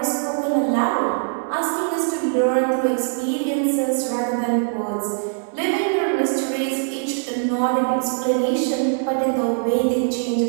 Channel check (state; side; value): silent; left; digital silence